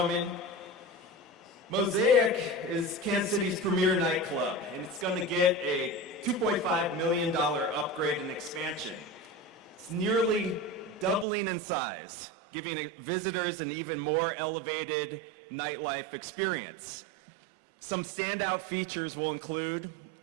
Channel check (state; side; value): drops out; left; at 11.2 s